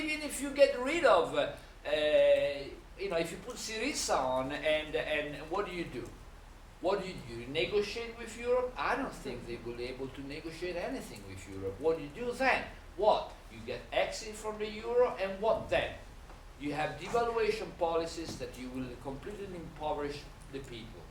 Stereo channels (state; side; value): identical; both; correlation 1.00